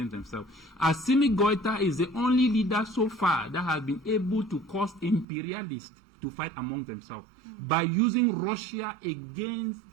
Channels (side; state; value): left; drops out; at 5.2 s